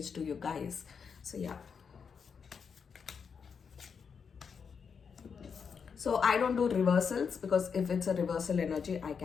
to you guys. So yeah, so I don't do reversals because if it's a reversal energy I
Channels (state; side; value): quieter; right; 6.3 dB